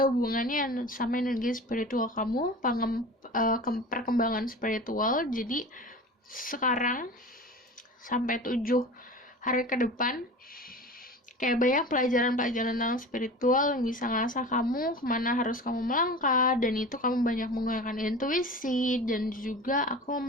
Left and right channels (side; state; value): both; normal; correlation 0.35